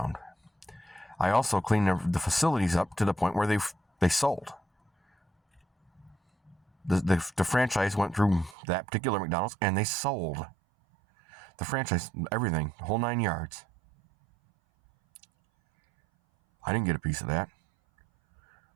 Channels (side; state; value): left; drops out; at 8.6 s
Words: I also cleaned the facilities up to the point where they sold. The franchise went through that particular McDonald's and they sold. The franchise, everything, the whole 9 yards. I didn't get a piece of that.